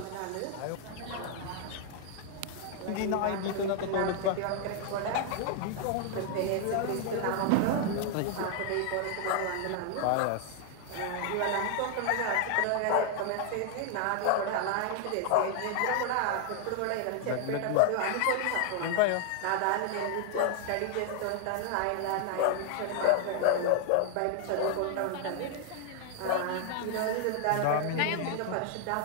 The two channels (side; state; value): both; different; correlation 0.00